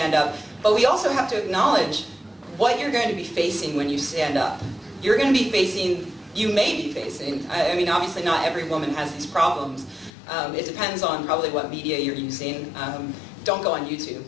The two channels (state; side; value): drops out; right; at 10.1 s